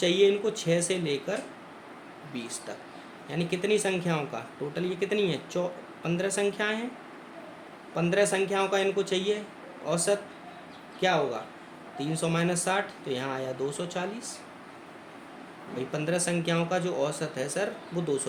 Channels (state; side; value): identical; both; correlation 1.00